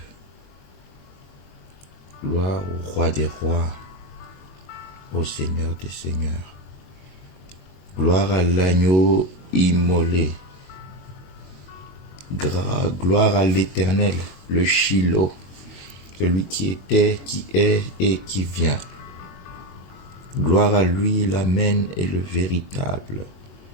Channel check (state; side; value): late; right; 22 ms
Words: Gloire au Roi des rois, au Seigneur des seigneurs. Gloire à l'agneau immolé. Gloire à l'Éternel, le Shiloh, celui qui était, qui est et qui vient. Gloire à lui, l'Amen et le véritable.